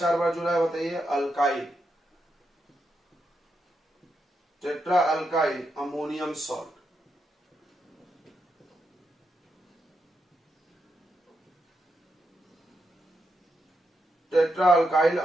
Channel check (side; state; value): both; normal; correlation 0.84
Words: बार जुड़ा है बताइए, alkyl, tetra alkyl ammonium salt. Tetra alkyl